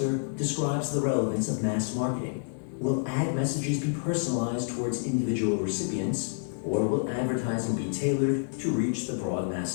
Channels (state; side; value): silent; right; digital silence